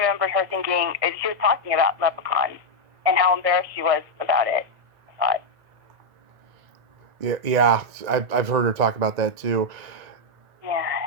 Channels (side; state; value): left; late; 1.9 ms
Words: her thinking she was talking about Leprechaun and how embarrassed she was about it. I thought. Yeah. I've heard her talk about that too. Yeah.